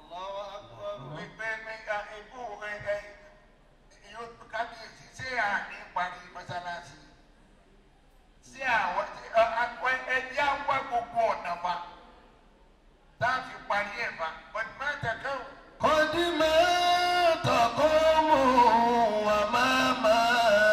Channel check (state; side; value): identical; both; correlation 1.00